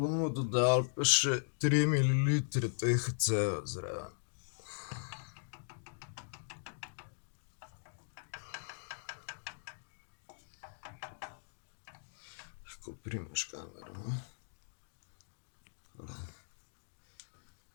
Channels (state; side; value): silent; right; digital silence